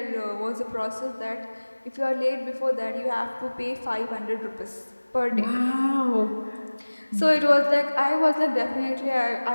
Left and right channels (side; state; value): both; inverted; correlation -1.00